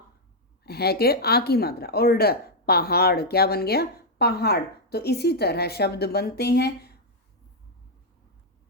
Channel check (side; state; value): both; normal; correlation -0.02